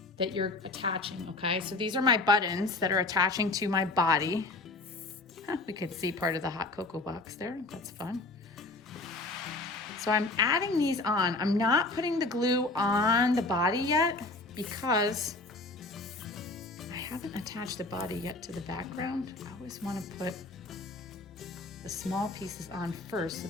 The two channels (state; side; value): quieter; right; 3.1 dB